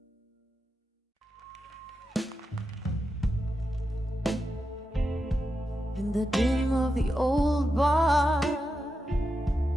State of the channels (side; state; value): both; normal; correlation 0.88